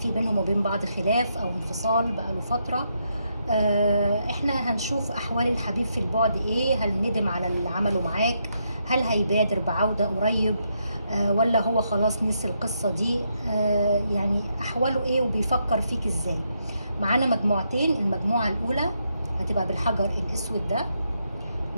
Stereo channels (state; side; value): inverted; both; correlation -0.79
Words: بينهم وبين بعض خلاف او انفصال بقاله فتره. احنا هنشوف احوال الحبيب في البعد ايه، هل ندم على اللي عمله معاك، هل هيبادر بعوده قريب، ولا هو خلاص نسي القصه دي، يعني احواله ايه وبيفكر فيك ازاي. معانا مجموعتين، المجموعه الاولى هتبقى بالحجر الاسود ده،